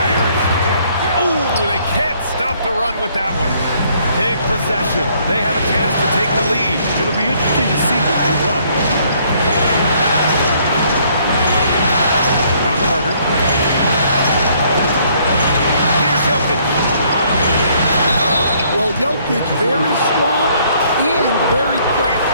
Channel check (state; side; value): inverted; both; correlation -0.65